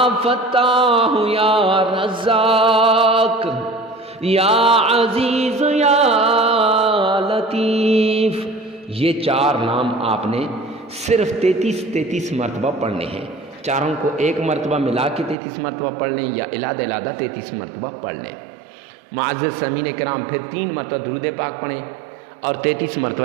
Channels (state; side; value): drops out; left; at 15.4 s